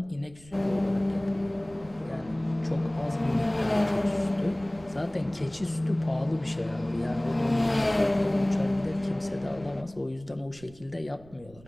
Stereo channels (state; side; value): noise; right; rumble, 22 dB below the sound